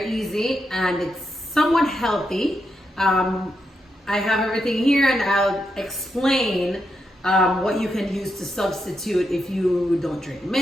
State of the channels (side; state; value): both; normal; correlation 0.84